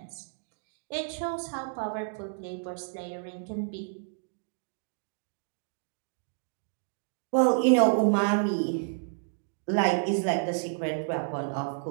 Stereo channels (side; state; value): left; silent; digital silence